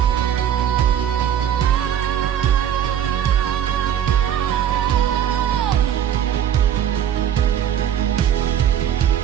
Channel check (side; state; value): left; quieter; 9.8 dB